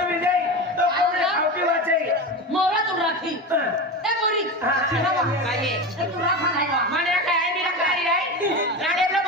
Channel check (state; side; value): normal; both; correlation 0.23